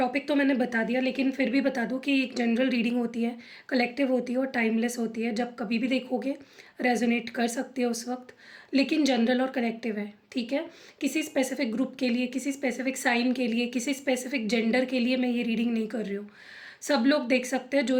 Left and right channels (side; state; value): both; identical; correlation 1.00